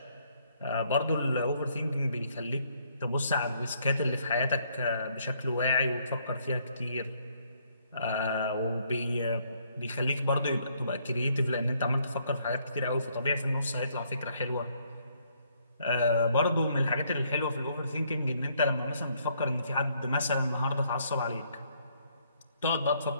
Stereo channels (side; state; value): both; inverted; correlation -0.69